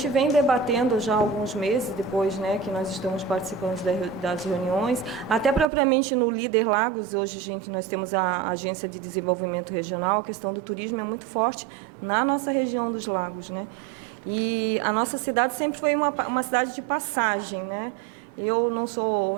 vem debatendo já há alguns meses, depois, né, que nós estamos participando das reuniões, até propriamente no Líder Lagos. Hoje nós temos a Agência de Desenvolvimento Regional, a questão do turismo é muito forte na nossa região dos lagos, né? E a nossa cidade sempre foi uma cidade de passagem, né? Eu não sou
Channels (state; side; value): drops out; left; at 5.7 s